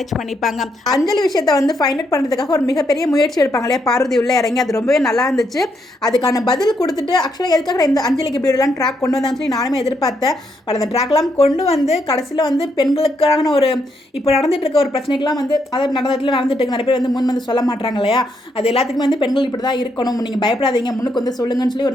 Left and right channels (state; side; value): normal; both; correlation 0.77